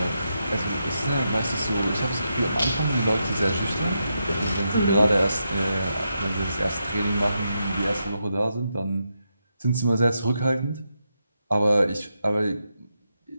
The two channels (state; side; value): inverted; both; correlation -0.84